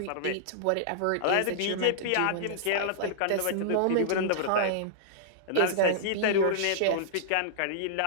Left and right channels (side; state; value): both; different; correlation -0.02